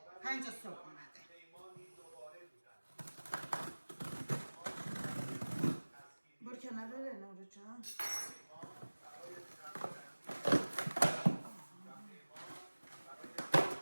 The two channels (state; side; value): inverted; both; correlation -1.00